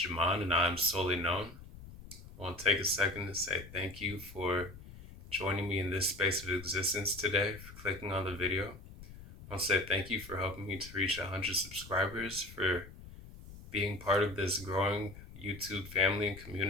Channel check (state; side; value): noise; left; rumble, 16 dB below the sound